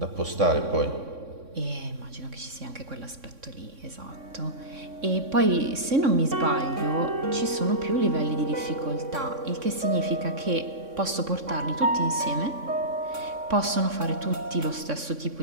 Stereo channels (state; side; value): late; left; 3.6 ms